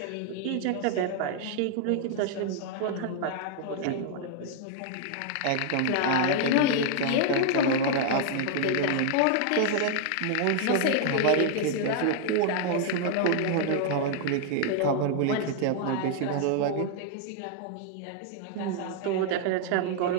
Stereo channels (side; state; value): both; different; correlation 0.00